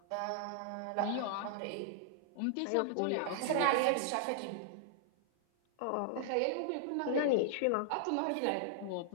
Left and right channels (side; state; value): both; different; correlation -0.01